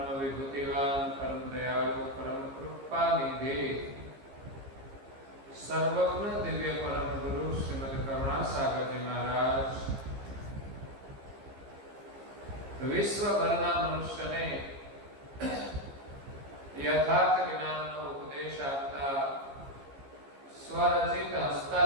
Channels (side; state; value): left; late; 15 ms